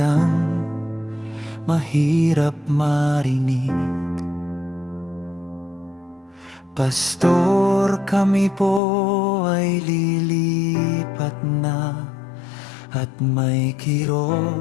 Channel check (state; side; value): drops out; right; at 8.8 s